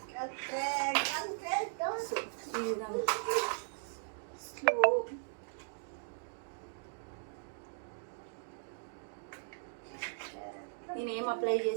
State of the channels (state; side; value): silent; left; digital silence